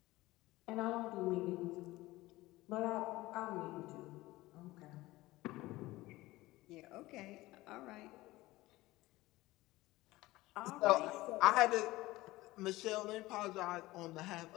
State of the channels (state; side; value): quieter; right; 18.7 dB